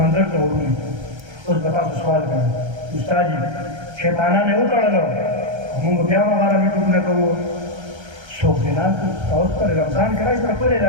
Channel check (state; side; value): late; left; 1.3 ms